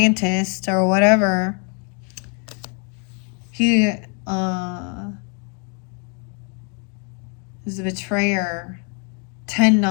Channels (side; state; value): right; quieter; 38.1 dB